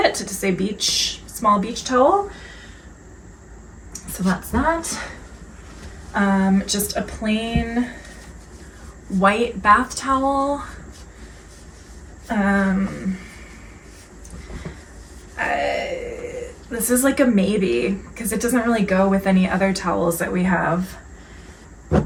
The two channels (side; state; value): both; identical; correlation 1.00